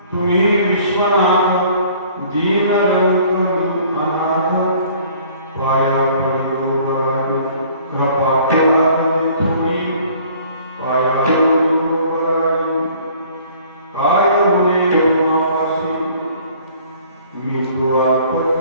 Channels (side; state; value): both; inverted; correlation -0.54